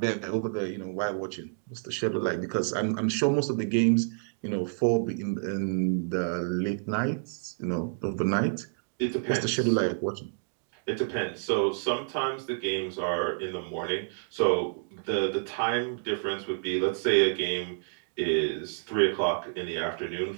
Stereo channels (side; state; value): left; silent; digital silence